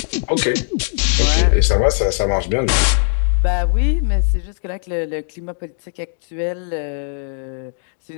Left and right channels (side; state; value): right; silent; digital silence